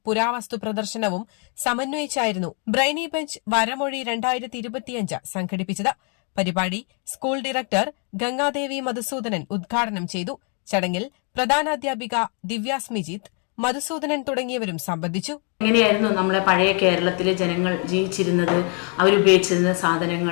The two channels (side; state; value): right; quieter; 38.2 dB